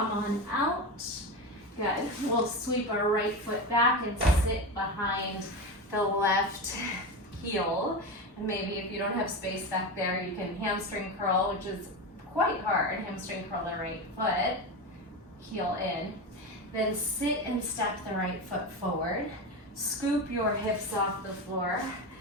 on out. Good. We'll sweep our right foot back and sit behind the left heel. And maybe if you don't have space back there, you can hamstring curl, which is quite hard. Hamstring curl the right foot, heel in. Then sit and step the right foot forward. Scoop your hips off the floor.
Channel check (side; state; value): both; normal; correlation 0.20